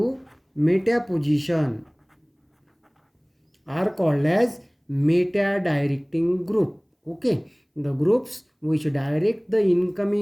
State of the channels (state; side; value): identical; both; correlation 1.00